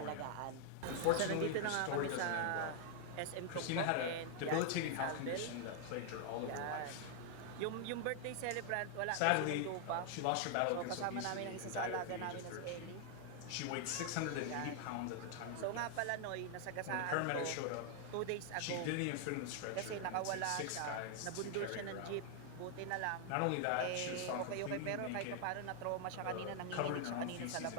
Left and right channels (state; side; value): different; both; correlation 0.00